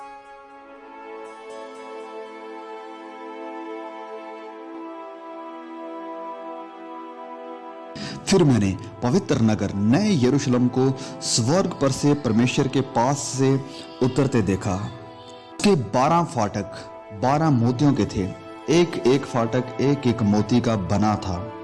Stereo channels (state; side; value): identical; both; correlation 1.00